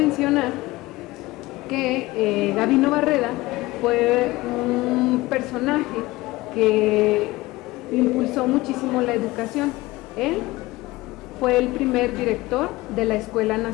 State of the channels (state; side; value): quieter; right; 19.8 dB